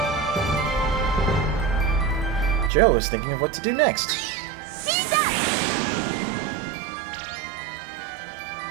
Joe is thinking of what to do next.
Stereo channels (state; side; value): drops out; left; at 2.7 s